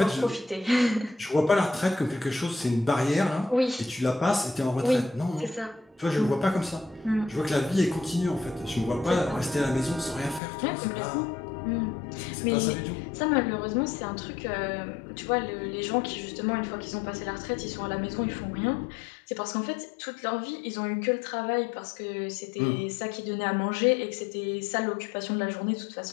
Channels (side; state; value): right; drops out; at 10.4 s